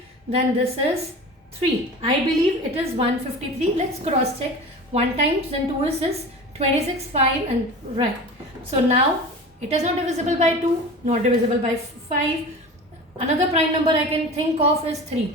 then this is 3. I believe it is 153. Let's cross check. 1 times then 2 is 26, 5 and right. So now it is not divisible by 2, not divisible by 5. Another prime number I can think of is 3.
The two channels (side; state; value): both; normal; correlation 0.34